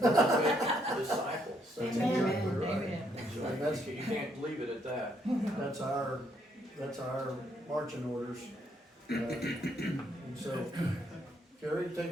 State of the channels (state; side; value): normal; both; correlation 0.72